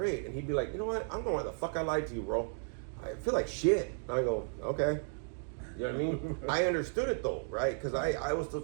And he'd be like, you know what? I don't know why the fuck I lied to you, bro. I feel like shit. And I go, okay. You know what I mean? I understood it though, right? Because I was still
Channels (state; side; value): silent; left; 55 dB below the other